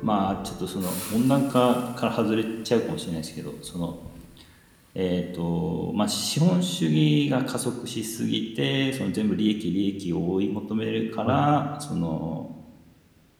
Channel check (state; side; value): identical; both; correlation 1.00